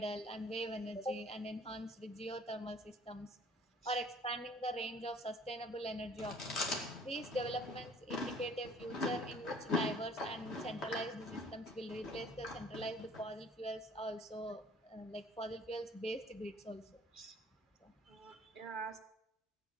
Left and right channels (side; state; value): both; normal; correlation 0.53